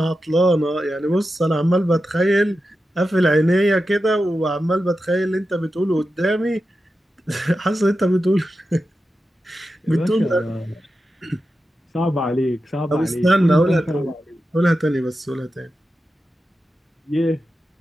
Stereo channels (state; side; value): normal; both; correlation 0.91